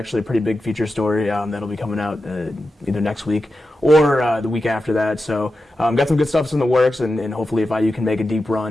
a pretty big feature story that'll be coming out either next week or the week after that. So got some good stuff in the works, and hopefully if IU can make a deep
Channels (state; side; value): normal; both; correlation 0.91